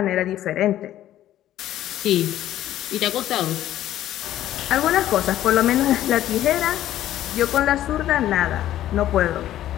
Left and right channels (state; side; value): quieter; right; 12.9 dB